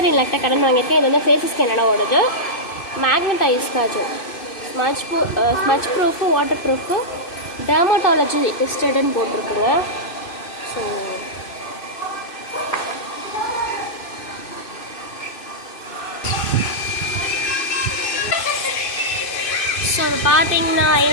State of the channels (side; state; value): right; late; 2.6 ms